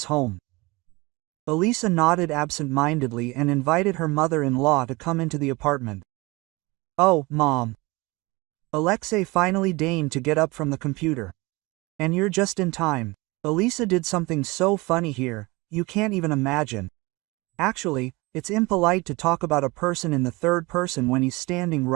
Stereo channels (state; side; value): quieter; left; 23.7 dB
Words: home. Elisa nodded absent-mindedly and invited her mother-in-law to come into the apartment. "Oh, Mom." Alexei finally deigned to get up from the computer. "And you're just in time. Elisa did something so funny here, you can't even imagine. Actually, it's impolite to talk about a person in the third person when he's standing